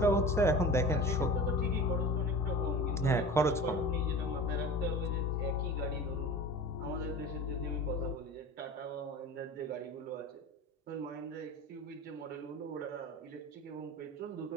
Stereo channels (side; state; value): both; normal; correlation 0.36